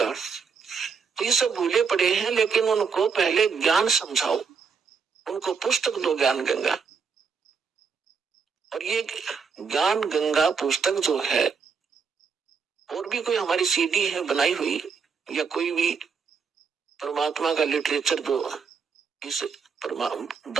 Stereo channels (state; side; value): quieter; left; 5.8 dB